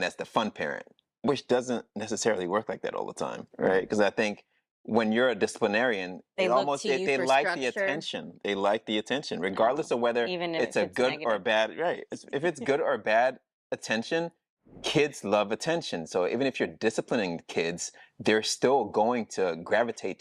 the fun parent, which doesn't necessarily work like that all the time, right? Because I think when you're a disciplinarian, They look to you they for like the structure. attention. They like the attention, regardless of whether Even if it's a good negative. or bad, right? If it's good or bad attention, kids love attention. So even if you're disciplining kids, they're still going to gravitate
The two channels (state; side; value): identical; both; correlation 1.00